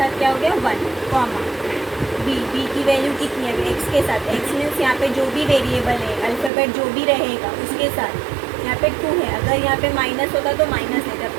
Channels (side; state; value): left; drops out; at 6.5 s